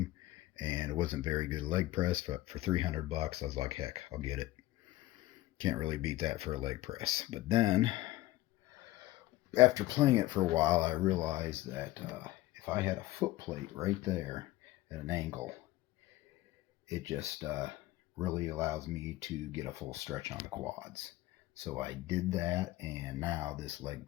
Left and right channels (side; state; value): right; quieter; 16.8 dB